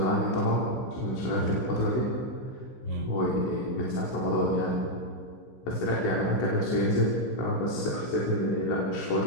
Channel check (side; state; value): right; late; 15 ms